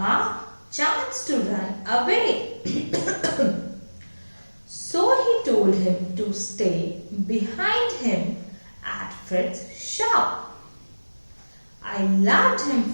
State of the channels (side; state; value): both; inverted; correlation -1.00